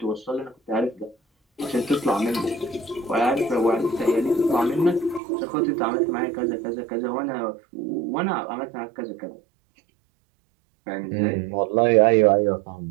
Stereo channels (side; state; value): left; drops out; at 5.2 s